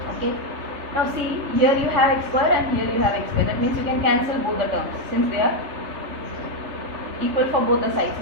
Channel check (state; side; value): late; left; 3.3 ms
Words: Okay. Now see, here you have x square and here you have x square. That means you can cancel both the terms since they are equal for both the sides.